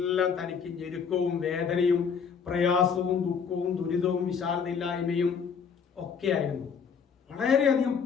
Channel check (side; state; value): right; quieter; 6.4 dB